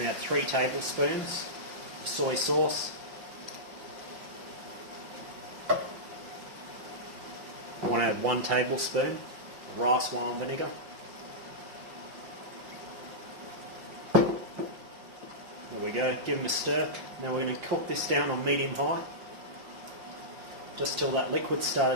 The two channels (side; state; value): left; late; 5.7 ms